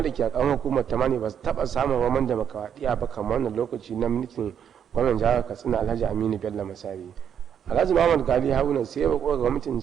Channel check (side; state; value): left; quieter; 8.4 dB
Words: da ke a karamar hukumar ta Mani ba su taɓa samun roman demokaradiyya ba kamar wannan lokaci na mulkin gwamnan jihar Katsina Alhaji Aminu Bello Masari. Alhaji Muhammad Gali Haruna sai ya roƙo ga gwamnatin